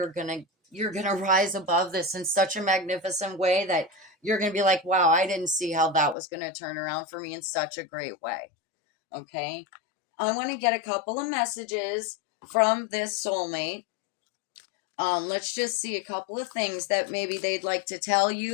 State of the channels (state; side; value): drops out; right; at 6.2 s